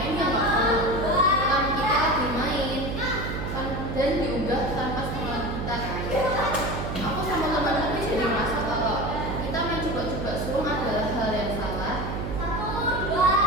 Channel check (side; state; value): right; noise; hum, 4 dB below the sound